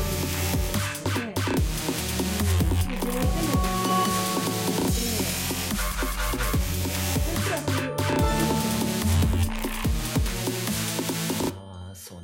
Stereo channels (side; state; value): both; identical; correlation 1.00